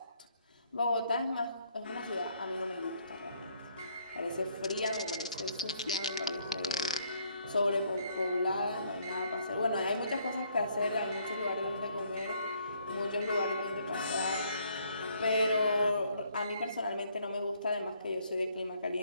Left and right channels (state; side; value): inverted; both; correlation -0.68